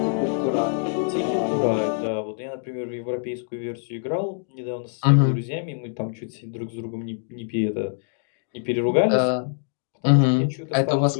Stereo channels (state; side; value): silent; right; digital silence